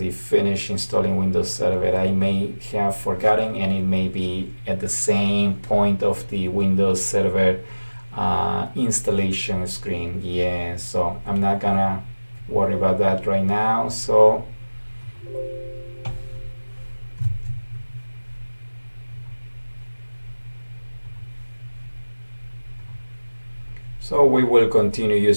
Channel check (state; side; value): inverted; both; correlation -1.00